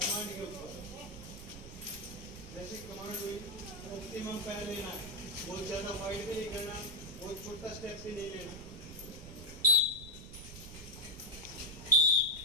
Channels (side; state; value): right; noise; rumble, 13 dB below the sound